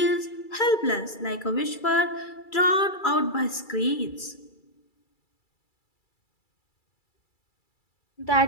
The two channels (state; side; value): late; right; 2.3 ms